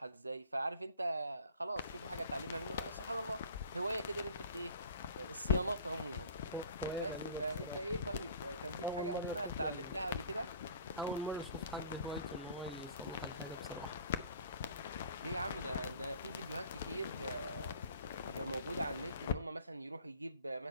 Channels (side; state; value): both; inverted; correlation -0.49